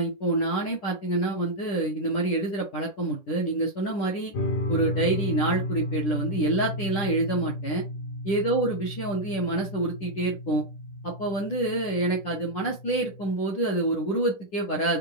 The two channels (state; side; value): late; right; 10 ms